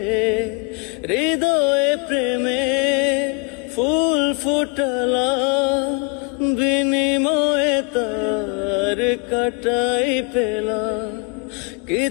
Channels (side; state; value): right; quieter; 33.8 dB